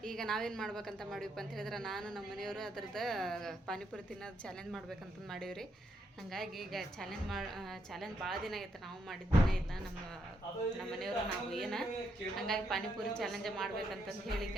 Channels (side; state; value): both; normal; correlation 0.77